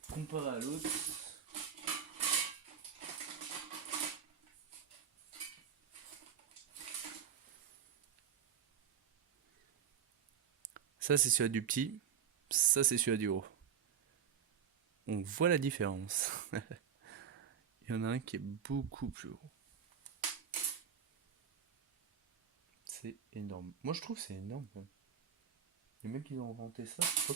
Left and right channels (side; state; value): left; quieter; 8.0 dB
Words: comparé à l'autre. Ça c'est celui du petit, ça c'est celui du gros. On voit la différence. Il y en a un qui est beaucoup plus gros. C'est énorme. Moi je trouve que c'est énorme. Les mecs qui ont inventé ça,